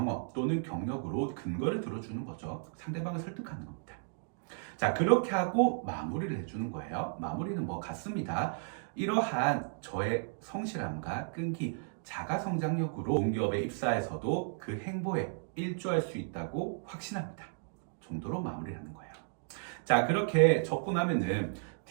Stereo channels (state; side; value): silent; left; digital silence